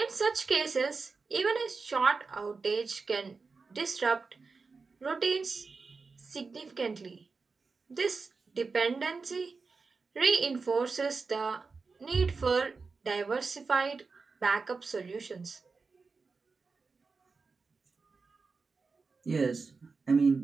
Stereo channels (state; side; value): quieter; left; 4.5 dB